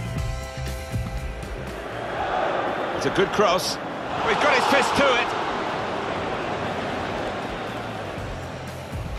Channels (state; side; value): identical; both; correlation 1.00